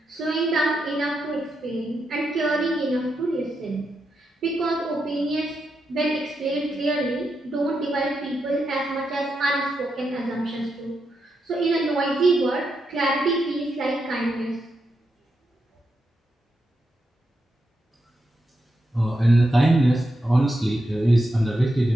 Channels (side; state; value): both; normal; correlation 0.85